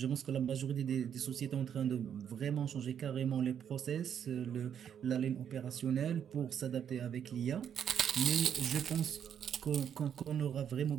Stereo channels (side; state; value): left; quieter; 8.6 dB